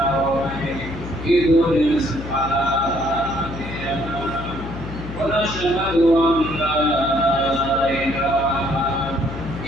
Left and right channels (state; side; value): noise; left; hum, 10 dB below the sound